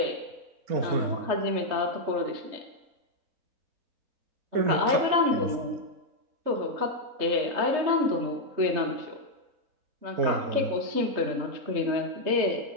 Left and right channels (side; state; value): left; late; 3.3 ms